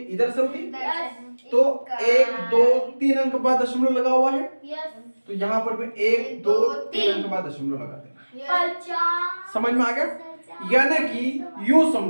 इधर से होती है। तो 1 2 3 अंक बाद दशमलव लगा हुआ है, तो यहाँ पर भी 1 2 3 अंक बाद दशमलव लगा देना। समझ में आ गया? यानी कि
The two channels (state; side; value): inverted; both; correlation -1.00